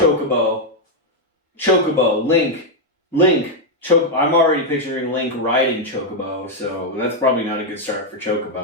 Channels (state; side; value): normal; both; correlation 0.00